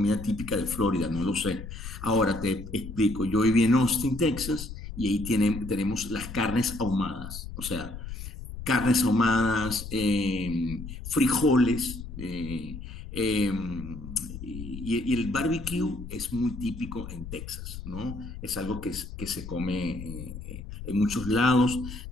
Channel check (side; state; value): left; noise; rumble, 10 dB below the sound